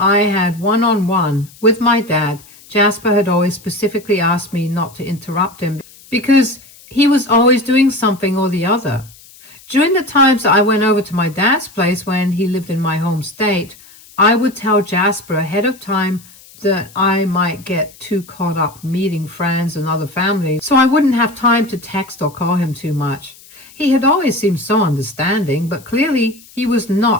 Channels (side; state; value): left; noise; hiss, 23 dB below the sound